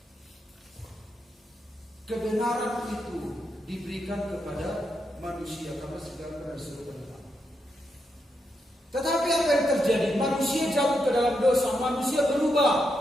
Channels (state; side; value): normal; both; correlation 0.83